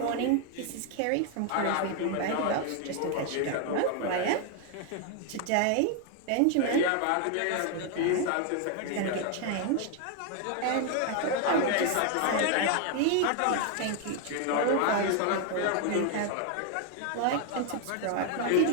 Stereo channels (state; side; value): different; both; correlation 0.01